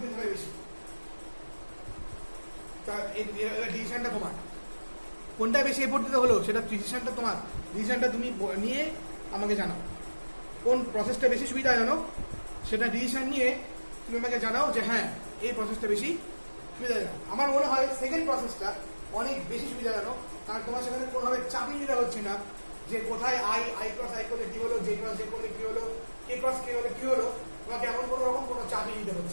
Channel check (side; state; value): both; inverted; correlation -1.00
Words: দিতে হবে বেশি? তা এই ডিসিশনটা তোমার, কোনটা বেশি এফোর্ট দিতে হলো সেটা ডিসিশনটা তোমার। ডিসিশনটা তুমি নিয়ে আমাকে জানাও কোন প্রসেসটা বেশি সুবিধাজনক, সেটা ডিসিশন নিয়ে তুমি আমাকে জানাও যে হ্যাঁ এই প্রসেসটা বেশি সুবিধাজনক। আমার মনে হয় সেকেন্ড প্রসেসটা অনেক বেশি সুবিধাজনক, কারণ তোমার সেখানে কোনোভাবে চাপিয়ে নিতে হচ্ছে না যে কোথায় আই ক্রস আই করলে কি হলো, জে ক্রস জে করলে কি হলো, কে ক্রস কে হলে কি হলো, তোমাকে এমন কোনো রকম কোনো চাপিয়ে নিতে